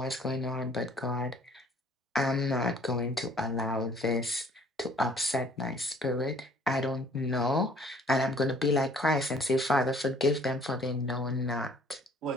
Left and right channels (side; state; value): both; normal; correlation 0.56